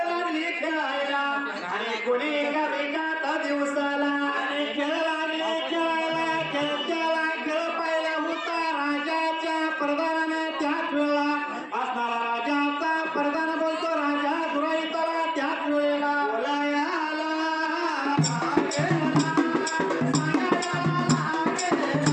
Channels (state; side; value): identical; both; correlation 1.00